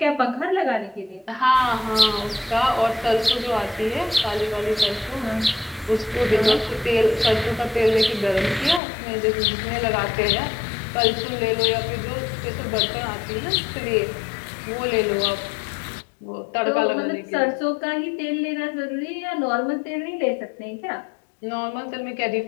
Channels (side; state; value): right; drops out; at 8.8 s